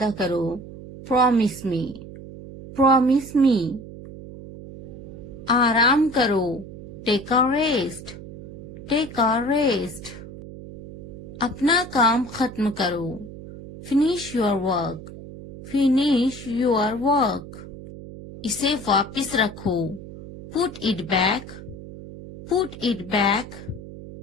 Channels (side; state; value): right; noise; hum, 14 dB below the sound